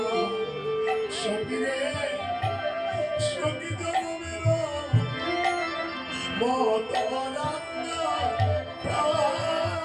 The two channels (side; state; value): both; identical; correlation 1.00